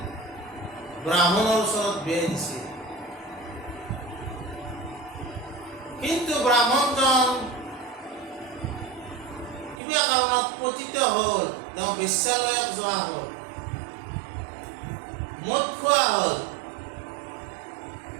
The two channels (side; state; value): left; drops out; at 9.8 s